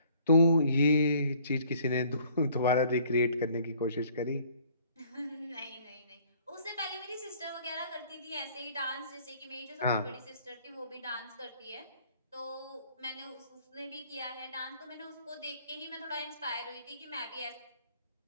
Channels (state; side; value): inverted; both; correlation -0.58